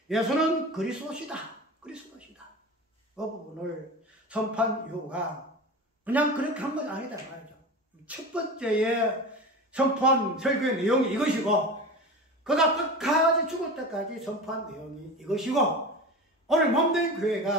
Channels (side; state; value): both; normal; correlation 0.30